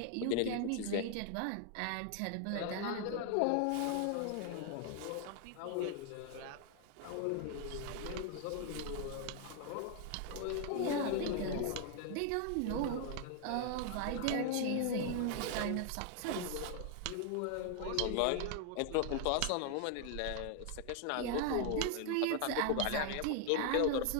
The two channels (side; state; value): both; different; correlation 0.00